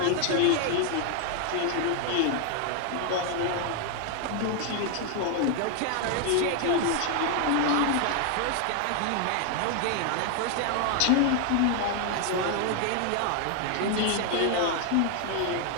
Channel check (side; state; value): both; different; correlation 0.00